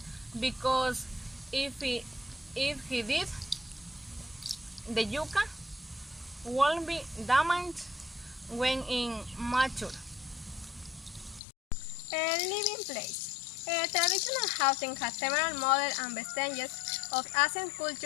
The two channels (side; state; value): right; drops out; at 11.4 s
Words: because if he did, the yucca won't be damaged when immature. Living place. Traditional housing has several models and vestiges of ancient